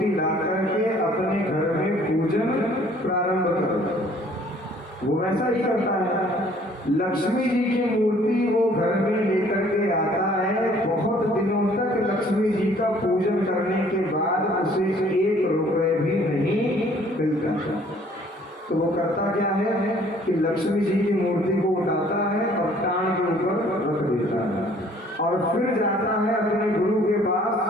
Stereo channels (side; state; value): both; normal; correlation 0.58